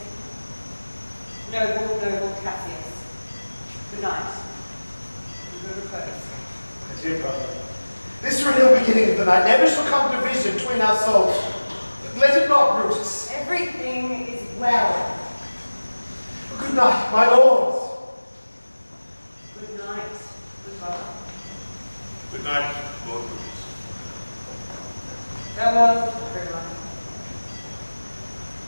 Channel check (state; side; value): inverted; both; correlation -1.00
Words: Noble Cassius. Good night. And good repose. My dear brother, this renewed beginning of the night never shall come division between our souls. Let it not, Brutus. Everything is well. Good night, my lords. Good night, good brother. Good night, Lord Brutus. Farewell, everyone.